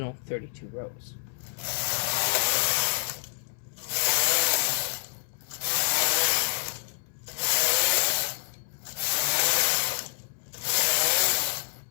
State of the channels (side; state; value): right; silent; 60 dB below the other